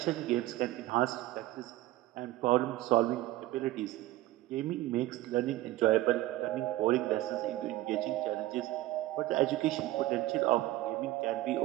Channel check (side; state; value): left; quieter; 16.4 dB